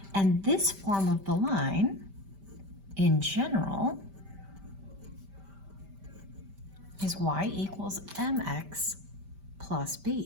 And this form of the line, in general, is Y equals MX plus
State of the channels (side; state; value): left; late; 5.1 ms